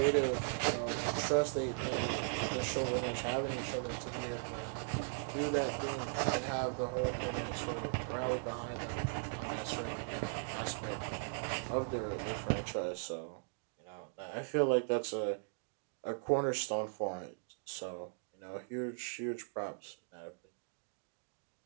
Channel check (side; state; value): left; silent; digital silence